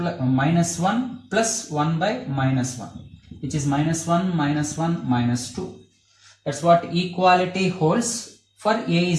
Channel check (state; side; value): identical; both; correlation 1.00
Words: 1 plus 1 by minus 1, which is minus 1, minus 1, minus 2. That's what equality holds for a